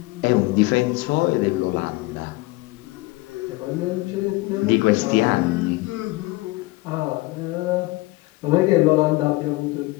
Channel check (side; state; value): right; quieter; 21.5 dB